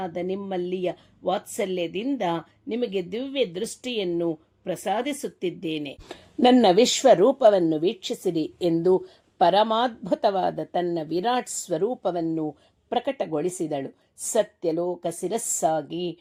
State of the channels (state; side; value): identical; both; correlation 1.00